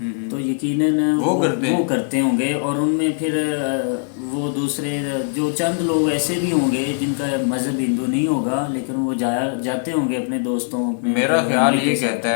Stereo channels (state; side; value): silent; right; 59 dB below the other